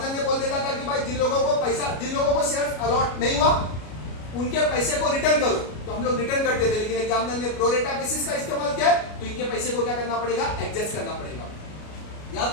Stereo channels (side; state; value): right; late; 33 ms